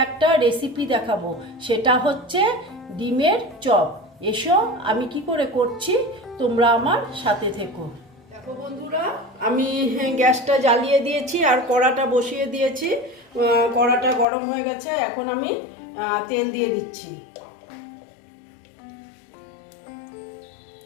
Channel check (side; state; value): right; drops out; at 14.2 s